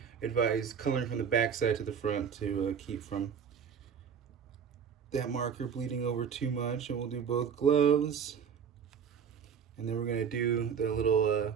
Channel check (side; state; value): left; quieter; 7.1 dB